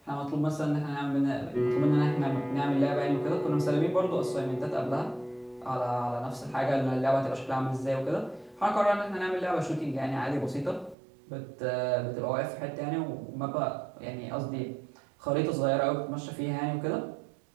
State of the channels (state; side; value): drops out; left; at 11.0 s